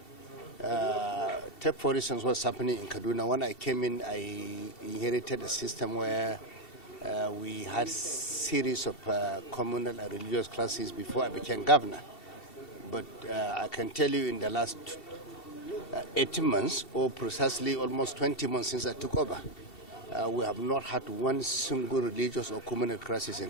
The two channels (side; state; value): right; late; 2.7 ms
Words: Take for instance what's happening in Kaduna. When I came in, I inherited a system where we had series of communal and religious classes before I became governor. But I can tell you in the last 18 months, or precisely almost 20 months since I took over, we have not had one single religious or communal crisis in